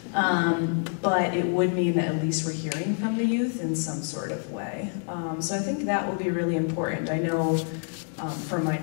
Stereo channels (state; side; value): silent; right; 55 dB below the other